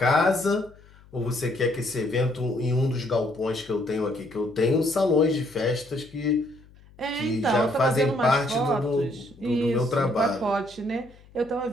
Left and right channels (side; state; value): left; noise; hum, 25 dB below the sound